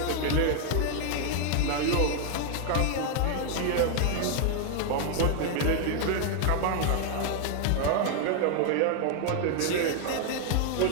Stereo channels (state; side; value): different; both; correlation 0.00